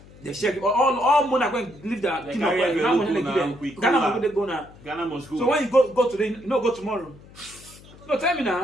They share all money are going to leave their kingdom. Ghana must go now. Ghana must go. So when you go today, you no go tomorrow. No, tell me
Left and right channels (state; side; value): noise; left; hum, 22 dB below the sound